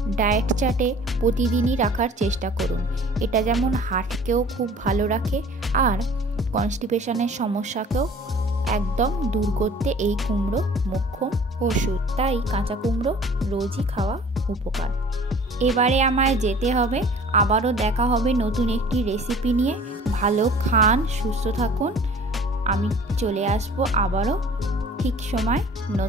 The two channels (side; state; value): both; normal; correlation 0.48